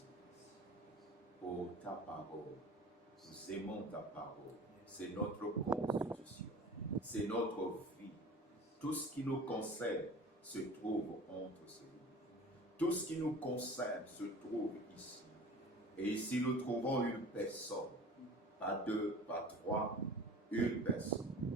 pour ta parole. Nous aimons ta parole. C'est notre constitution. C'est notre vie. Tout ce qui nous concerne se trouve entre ces lignes. Tout ce qui nous concerne se trouve ici. Et ici, nous trouvons une personne. Pas deux, pas trois. Une personne.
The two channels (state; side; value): normal; both; correlation 0.40